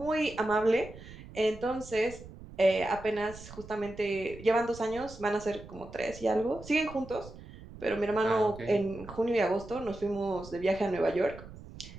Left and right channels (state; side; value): noise; right; rumble, 16 dB below the sound